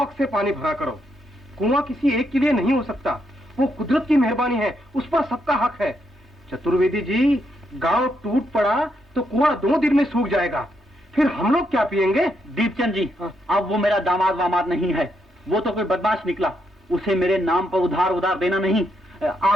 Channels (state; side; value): normal; both; correlation 0.78